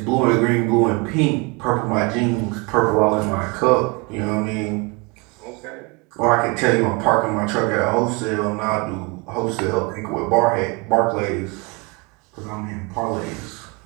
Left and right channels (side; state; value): left; quieter; 28.1 dB